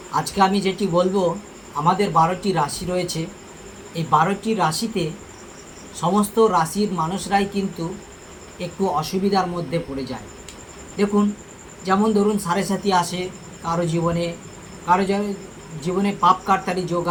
আজকে আমি যেটি বলবো, আমাদের 12টি রাশি রয়েছে। এই 12টি রাশিতে সমস্ত রাশির মানুষরাই কিন্তু একটু অসুবিধার মধ্যে পড়ে যায়। দেখুন, যেমন ধরুন সাড়ে সাথী আসে কারো জীবনে, কারো জীবনে পাপ কাটতালি যোগ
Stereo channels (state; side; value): identical; both; correlation 1.00